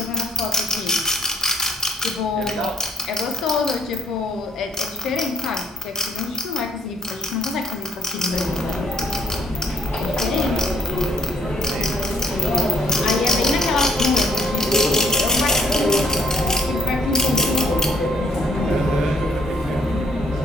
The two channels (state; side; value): normal; both; correlation 0.64